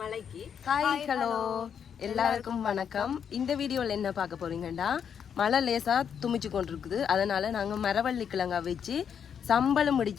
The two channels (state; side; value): quieter; right; 7.7 dB